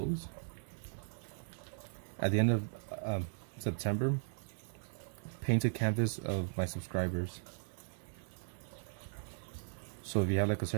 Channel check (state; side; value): silent; left; digital silence